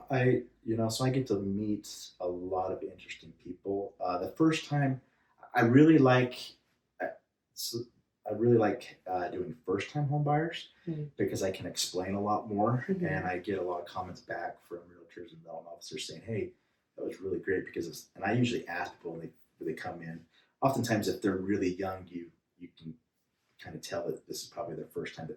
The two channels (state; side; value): identical; both; correlation 1.00